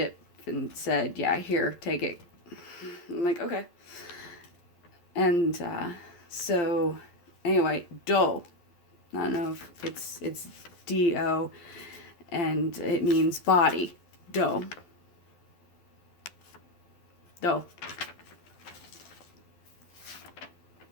and said, yeah, here, take it. I'm like, okay. And so, anyway, do. I don't know if it's D-O, and it means body. Do. Do.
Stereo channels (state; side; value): late; right; 12 ms